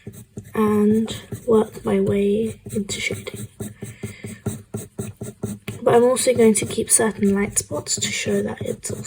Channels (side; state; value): both; identical; correlation 1.00